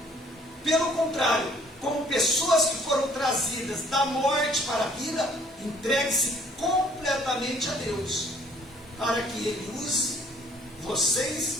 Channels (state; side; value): normal; both; correlation 0.58